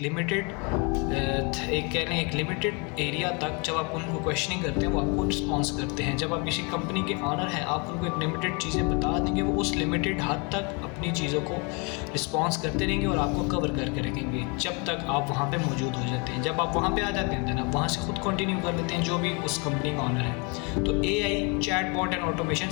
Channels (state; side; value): quieter; right; 31.8 dB